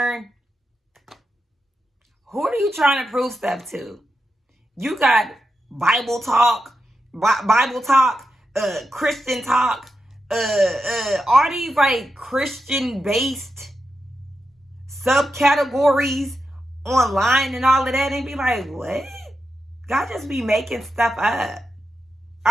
Who are you trying to prove stuff to? You got Bible talk, Christian talk, all these like Christian-based subcategories online and all of that, and be like, what? God just be making stuff up.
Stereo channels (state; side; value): normal; both; correlation 0.88